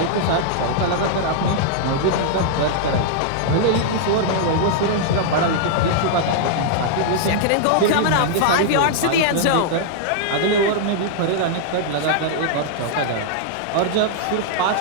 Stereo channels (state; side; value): different; both; correlation -0.01